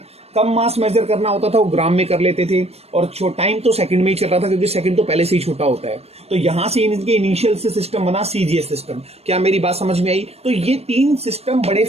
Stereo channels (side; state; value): left; late; 0.30 ms